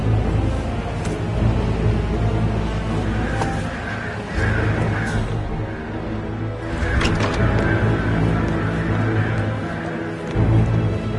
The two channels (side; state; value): both; identical; correlation 1.00